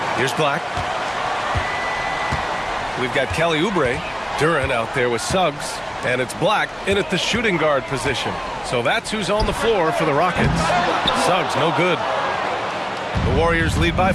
Here's Black. We've got Kelly Oubre. Duran out there with Suggs. And it's Black in at the shooting guard position. So that's who's on the floor for the Rockets. Suggs, no good. The Warriors lead by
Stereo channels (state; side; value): identical; both; correlation 1.00